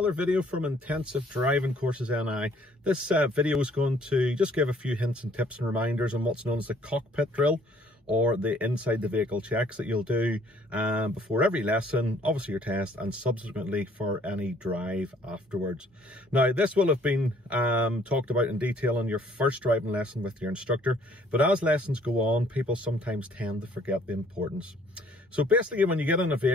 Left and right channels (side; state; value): both; normal; correlation 0.60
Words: video from Intensive Driving Courses NI. This video is going to just give a few hints and tips and reminders on what's known as the cockpit drill, or the inside the vehicle checks that you'll do before every lesson, obviously your test, and subsequently for any drive afterwards. Now this will have been talked about in detail on your first driving lesson with your instructor, but as lessons go on, people sometimes tend to forget the importance. So basically, when you get in a